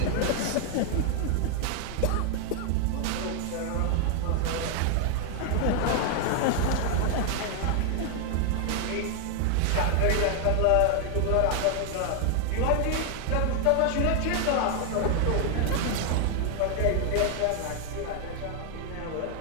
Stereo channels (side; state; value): both; different; correlation 0.00